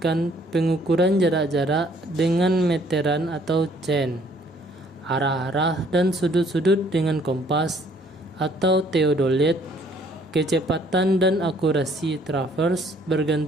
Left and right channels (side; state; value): both; normal; correlation 0.61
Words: pengukuran jarak-jarak dengan meteran atau chain, arah-arah dan sudut-sudut dengan kompas atau theodolit. Kecepatan dan akurasi traverse